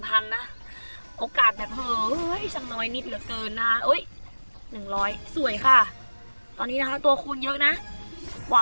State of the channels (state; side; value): inverted; both; correlation -1.00